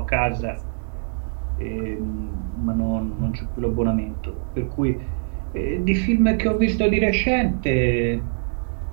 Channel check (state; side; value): silent; left; digital silence